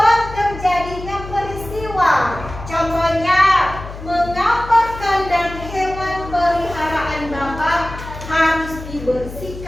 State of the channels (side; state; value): left; noise; hum, 12 dB below the sound